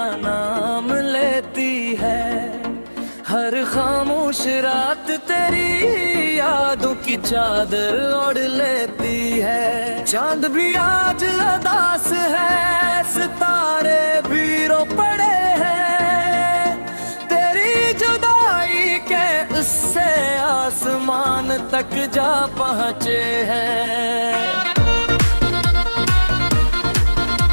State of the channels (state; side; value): inverted; both; correlation -1.00